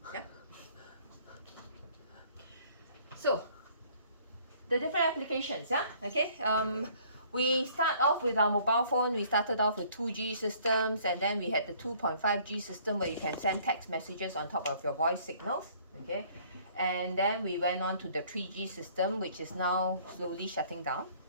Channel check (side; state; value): both; inverted; correlation -0.58